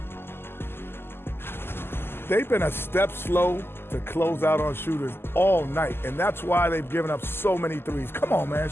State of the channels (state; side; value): late; right; 0.11 ms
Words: They've been a step slow to close out on shooters all night, and that's why they've given up so many threes. Come on, man,